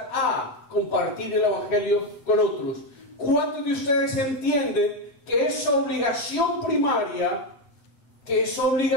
compartir el Evangelio con otros. ¿Cuántos de ustedes entienden que es obligación primaria, que es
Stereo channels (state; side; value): late; right; 8.0 ms